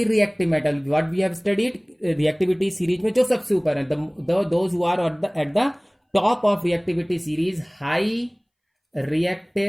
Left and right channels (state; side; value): identical; both; correlation 1.00